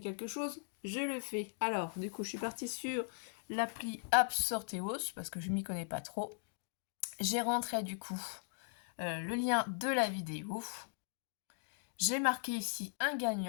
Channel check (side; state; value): right; silent; digital silence